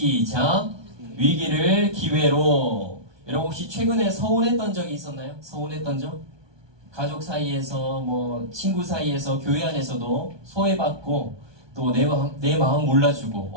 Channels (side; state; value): left; late; 1.2 ms